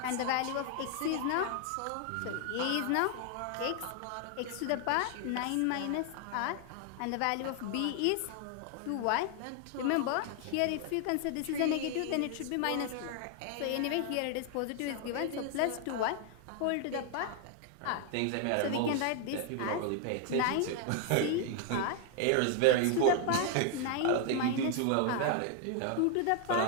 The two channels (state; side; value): different; both; correlation 0.00